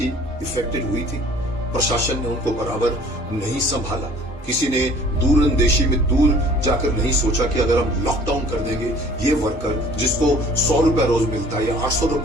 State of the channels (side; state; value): both; normal; correlation 0.52